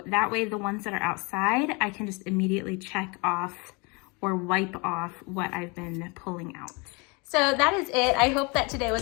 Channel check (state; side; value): quieter; right; 29.3 dB